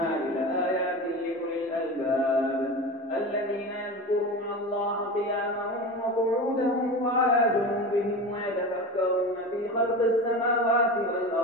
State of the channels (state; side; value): normal; both; correlation 0.28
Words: لآيات لأولي الألباب الذين يذكرون الله قياما وقعودا وعلى جنوبهم ويتفكرون في خلق السماوات